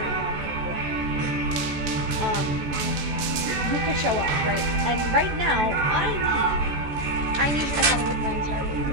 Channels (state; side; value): late; left; 14 ms